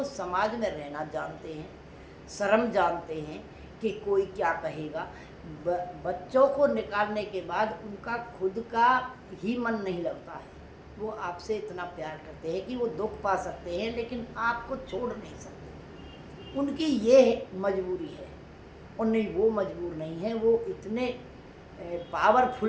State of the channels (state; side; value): identical; both; correlation 1.00